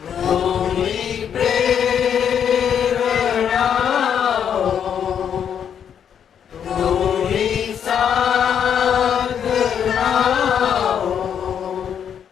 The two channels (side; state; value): right; quieter; 8.4 dB